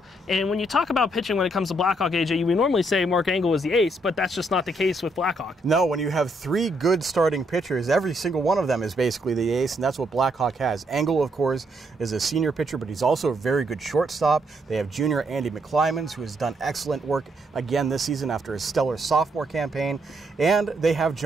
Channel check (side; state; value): both; normal; correlation 0.75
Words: And when you talk about pitching when it comes to Blackhawk, AJ, we normally say Mark Engel is the ace, but that's just not the case with Blackhawk. No, when you have three good starting pitchers, every single one of them is basically the ace, and that's what Blackhawk has. Engel, of course, is a senior pitcher, but he's also a very good shortstop. They have junior Andy McClymans, who has done excellent work again this season after his stellar sophomore campaign. And they have